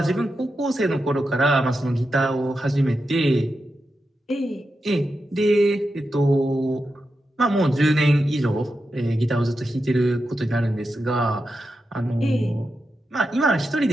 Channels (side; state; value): both; normal; correlation 0.89